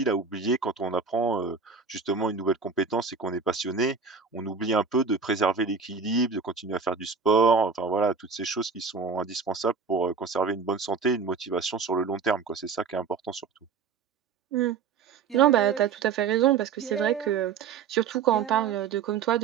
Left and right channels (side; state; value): left; quieter; 5.5 dB